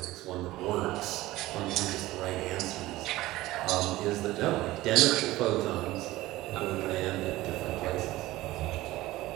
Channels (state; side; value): quieter; left; 17.5 dB